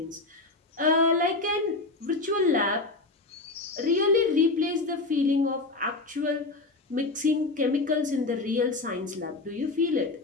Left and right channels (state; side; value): quieter; right; 3.3 dB